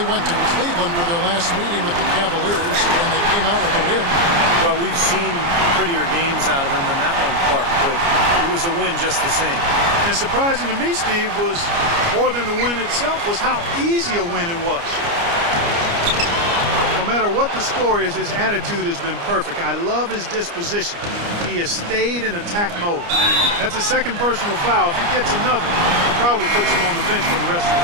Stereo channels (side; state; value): left; late; 29 ms